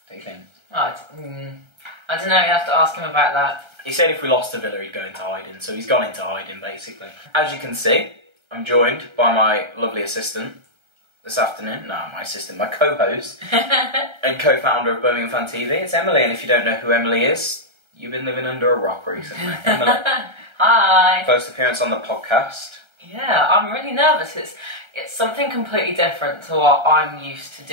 What do you think? I don't know, you have to ask him about that. He said if we lost to Villa, he'd go into hiding, so he's gone into hiding, basically. As you can see, I'm joined by my lovely assistant this afternoon. No, my assistant, my co-host and co-founder of Birmingham Fan TV. It's Emily, and if you don't know who Emily is, you've been living under a rock recently. Emily. Hi. First appearance on the podcast. Yeah, I'm really nervous. It's something completely different to what I'm used to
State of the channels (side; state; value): left; late; 1.3 ms